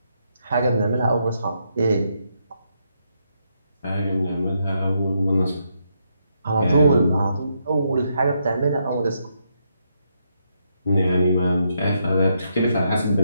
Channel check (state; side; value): inverted; both; correlation -0.79